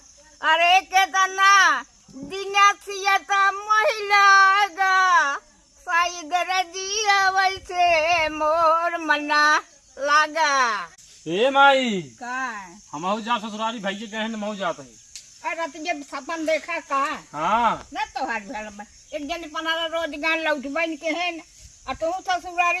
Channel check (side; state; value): both; identical; correlation 1.00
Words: अरे केतना दिनसियता महिलागा साई दरे जिया वैसे मोर मना लागा। ए माई का हमहू जा ससुरारी भैया गए हैं महू जाते हैं। अरे तुझे सपन देखा का हाँ न तो हर भेल में एक जन पनारा रोजगार लौट बन के है और तू